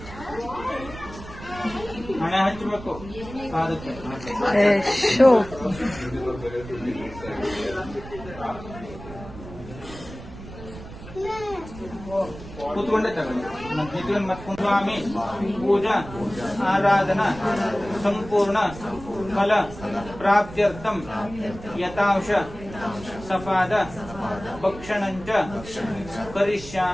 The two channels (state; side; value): noise; right; rumble, 14 dB below the sound